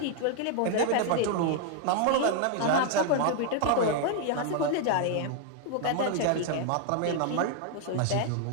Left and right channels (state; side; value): different; both; correlation 0.00